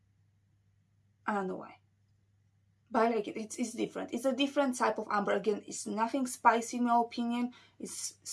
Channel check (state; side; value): identical; both; correlation 1.00